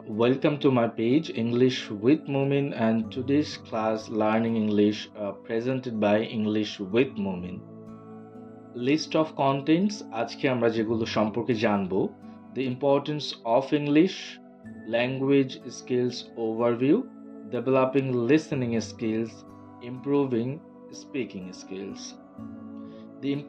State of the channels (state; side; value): identical; both; correlation 1.00